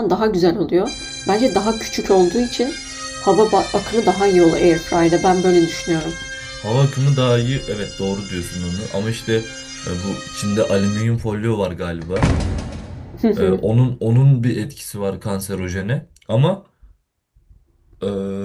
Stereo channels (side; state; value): both; identical; correlation 1.00